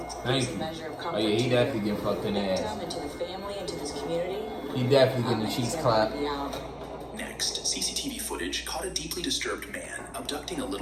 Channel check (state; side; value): identical; both; correlation 1.00